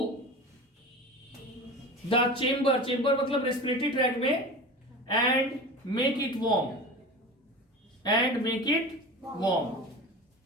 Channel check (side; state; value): both; normal; correlation 0.32